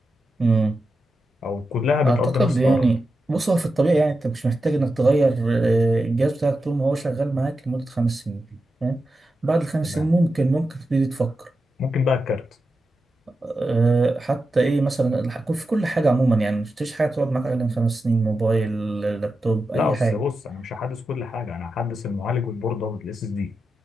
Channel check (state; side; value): normal; both; correlation 0.89